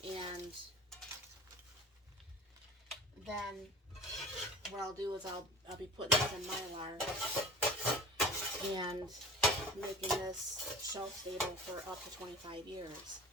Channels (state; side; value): normal; both; correlation 0.38